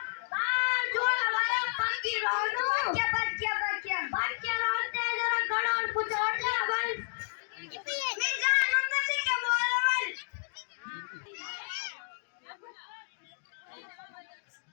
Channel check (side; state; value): right; silent; digital silence